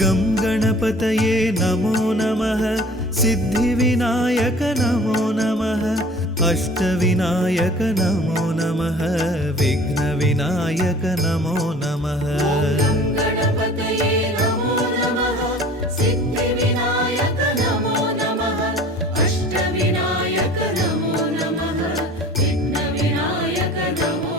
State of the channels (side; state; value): both; normal; correlation 0.46